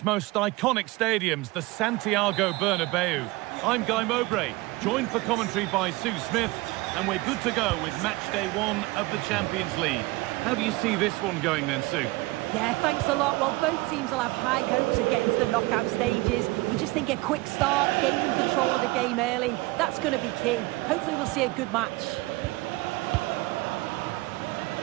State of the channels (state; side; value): quieter; left; 21.6 dB